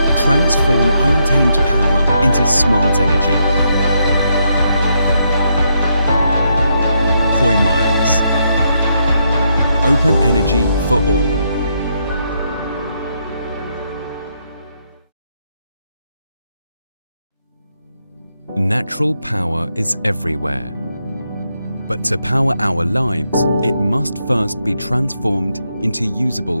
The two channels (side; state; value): both; inverted; correlation -0.78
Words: Transform untamed power into smart energy. Hoymiles. Open energy for all. Natural power is everywhere. But to power our lives, it must first be transformed into